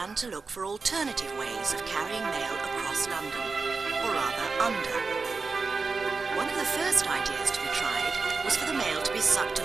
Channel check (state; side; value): quieter; left; 4.3 dB